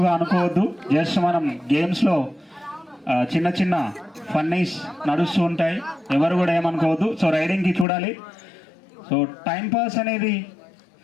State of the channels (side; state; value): right; drops out; at 7.9 s